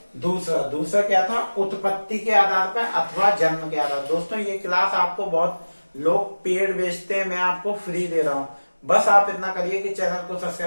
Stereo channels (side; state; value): both; inverted; correlation -1.00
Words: दूसरा क्या था, उत्पत्ति के आधार पर अथवा जन्म के आधार। दोस्तों ये क्लास आपको बहुत लोग पेड बेचते हैं, मैं आपको फ्री दे रहा हूं। बस आप इतना करिए कि चैनल को